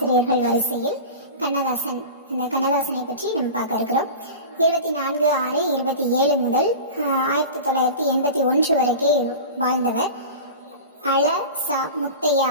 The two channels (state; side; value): inverted; both; correlation -0.32